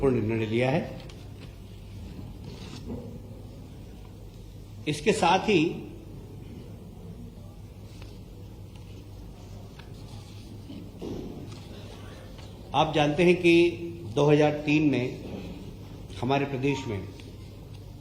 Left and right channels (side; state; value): both; identical; correlation 1.00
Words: निर्णय लिया है। इसके साथ ही आप जानते हैं कि 2003 में हमारे प्रदेश में